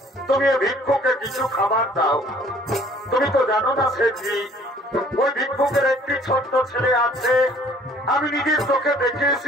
তুমি ভিক্ষুকে কিছু খাবার দাও। তুমি তো জানো না সেবরি, ওই ভিক্ষুকের একটি ছোট্ট ছেলে আছে, আমি নিজের চোখে দেখে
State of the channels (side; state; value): both; normal; correlation 0.56